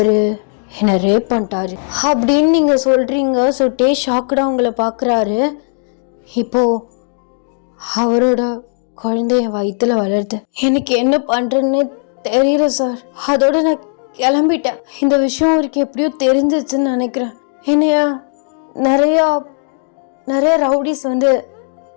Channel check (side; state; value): right; silent; digital silence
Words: என்னை ரேப் பண்ணிட்டாரு அப்படின்னு நீங்கள் சொல்கிறீங்க. ஸோ டே ஷாக்குடாக உங்களை பார்க்குறாரு. இப்போது அவரோட குழந்தைய வயிற்றுல வளருது. எனக்கு என்ன பண்ணுறேன்னு தெரியல சார். அதோட நான் கிளம்பிட்டேன். இந்த விஷயம் அவருக்கு எப்படியோ தெரிஞ்சிச்சுன்னு நினைக்கிறேன். என்னைய நிறைய ரவுடிஸ் வந்து